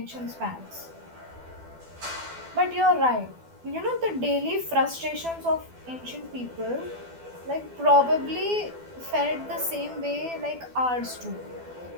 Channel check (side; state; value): left; late; 12 ms